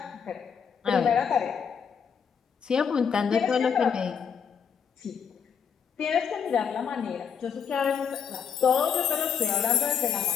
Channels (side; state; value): right; quieter; 7.0 dB